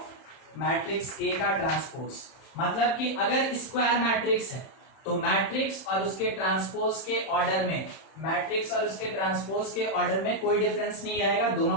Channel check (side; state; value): right; late; 31 ms